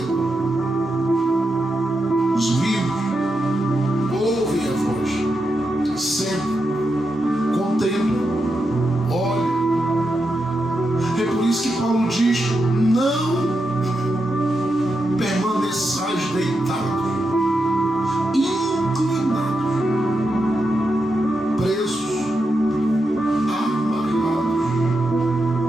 Os vivos ouvem a voz, sempre contemplam, olham. É por isso que Paulo diz: não permaneçais deitados, inclinados, presos, amarrados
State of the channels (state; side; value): normal; both; correlation 0.86